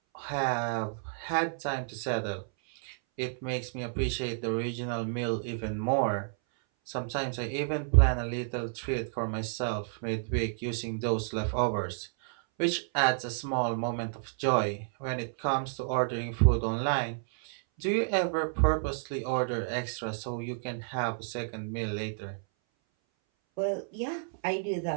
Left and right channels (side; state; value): left; silent; 57 dB below the other